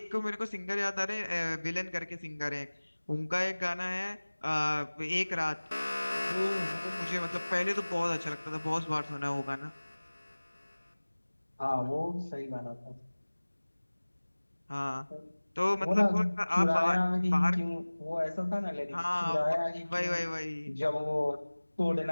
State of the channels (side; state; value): both; inverted; correlation -1.00